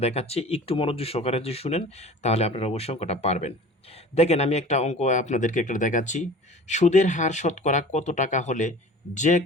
দেখাচ্ছি। একটু মনোযোগ সহকারে যদি শুনেন, তাহলে আপনারা অবশ্যই অঙ্কটা পারবেন। দেখেন, আমি একটা অঙ্ক আপনাদেরকে একটা দেখাচ্ছি। সুদের হার শতকরা কত টাকা হলে যে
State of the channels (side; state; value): both; normal; correlation 0.41